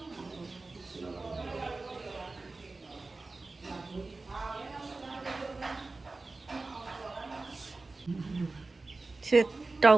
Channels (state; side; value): quieter; left; 3.5 dB